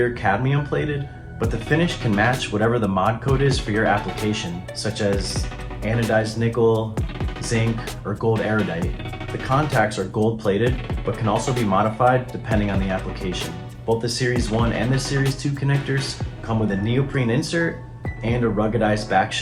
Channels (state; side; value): identical; both; correlation 1.00